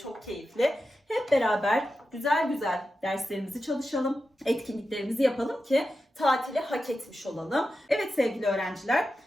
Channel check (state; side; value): normal; both; correlation 0.91